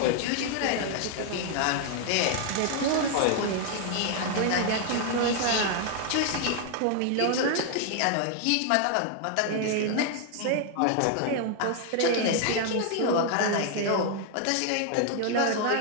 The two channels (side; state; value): both; different; correlation 0.00